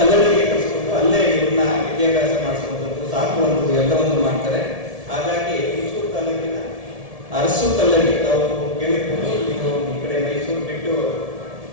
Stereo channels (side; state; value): left; late; 1.7 ms